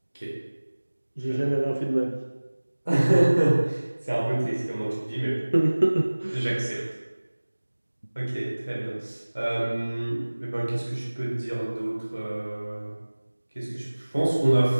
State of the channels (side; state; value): both; inverted; correlation -1.00